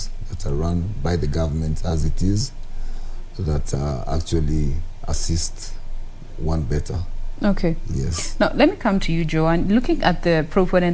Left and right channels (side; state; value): both; identical; correlation 1.00